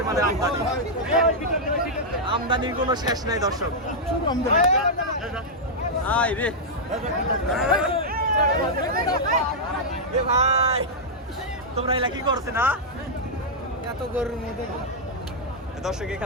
আমদানি, আমদানির কোনো শেষ নাই দর্শক। আয় রে ভাই, তোমরা এলা কি করছে না? এত গরুর মধ্যে দর্শক,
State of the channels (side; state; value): both; normal; correlation -0.06